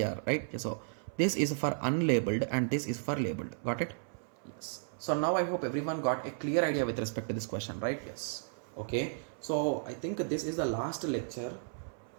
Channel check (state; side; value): silent; left; 55 dB below the other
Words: right? So this is for unlabeled and this is for labeled. Got it? Yes. So now I hope everyone got a clear idea with respect to this question, right? Yes. Okay, so I think this is the last lecture